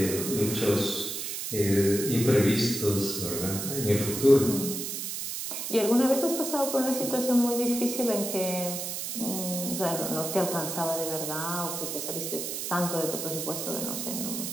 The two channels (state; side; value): noise; right; hiss, 4 dB below the sound